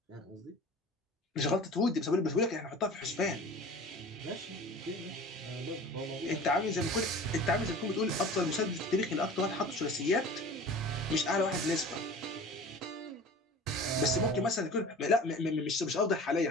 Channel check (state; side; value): normal; both; correlation 0.40